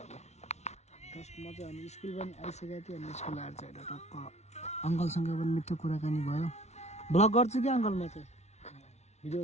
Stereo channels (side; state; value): right; late; 0.32 ms